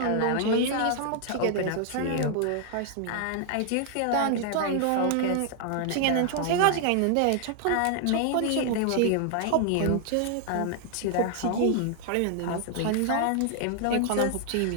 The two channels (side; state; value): both; different; correlation 0.00